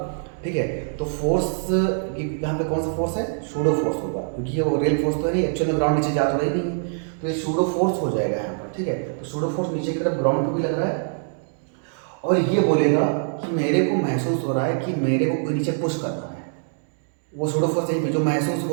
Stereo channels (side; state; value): left; silent; digital silence